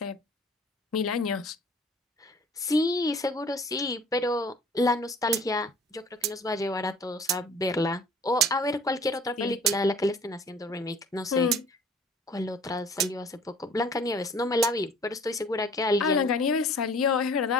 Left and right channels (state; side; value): normal; both; correlation 0.50